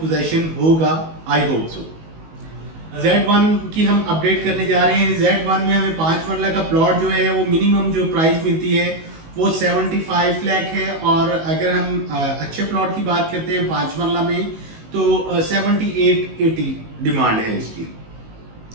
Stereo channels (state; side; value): late; left; 19 ms